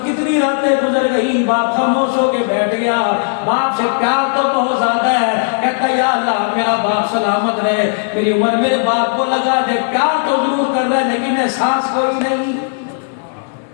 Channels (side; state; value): right; silent; digital silence